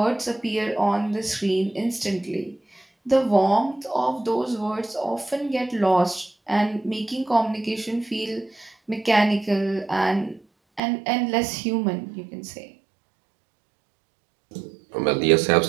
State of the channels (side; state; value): left; drops out; at 10.8 s